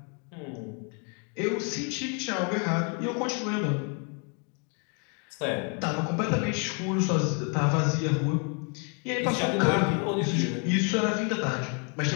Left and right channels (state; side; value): quieter; right; 38.3 dB